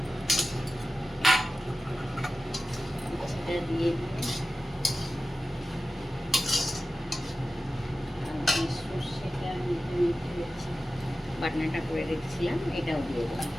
উচ্ছেটা দিয়ে সর্ষেটা বাটনাটা করে রেখেছিলাম, এটাও দিয়ে দেবো।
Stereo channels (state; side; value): normal; both; correlation 0.94